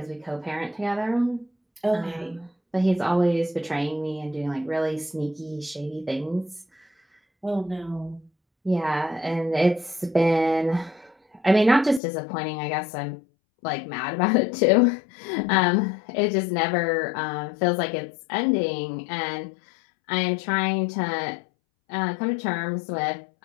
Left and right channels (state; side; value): drops out; right; at 12.0 s